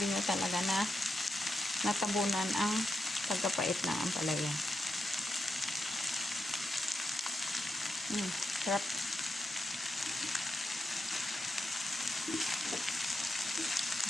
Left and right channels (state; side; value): normal; both; correlation 0.86